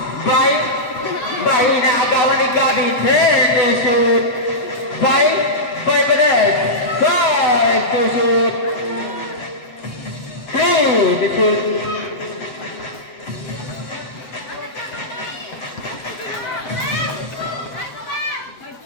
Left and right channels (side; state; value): right; late; 7.6 ms